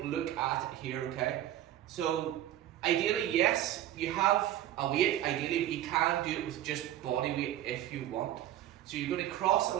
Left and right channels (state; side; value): quieter; left; 12.7 dB